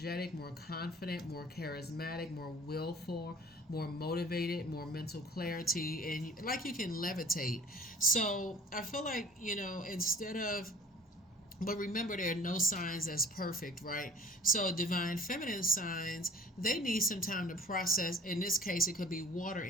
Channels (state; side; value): normal; both; correlation 0.48